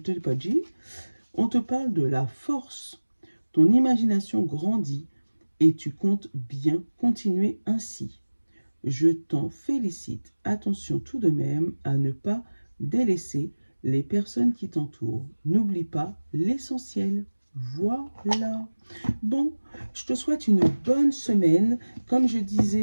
pas dit. On te parle de la force. Ton imagination grandit et tu comptes bien continuer ainsi. Je t'en félicite. Attention tout de même à ne pas délaisser les personnes qui t'entourent. N'oublie pas l'essentiel. Voilà. Bon, je te souhaite une bonne semaine. Comme je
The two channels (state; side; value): inverted; both; correlation -1.00